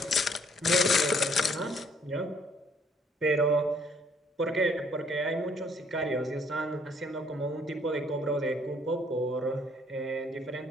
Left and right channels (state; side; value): normal; both; correlation 0.63